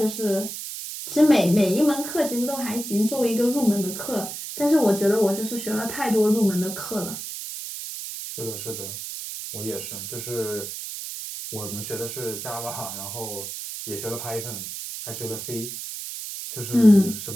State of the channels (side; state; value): right; noise; hiss, 8 dB below the sound